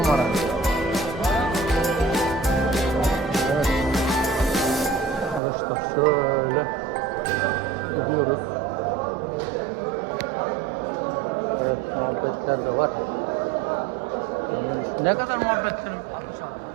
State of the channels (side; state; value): left; drops out; at 5.4 s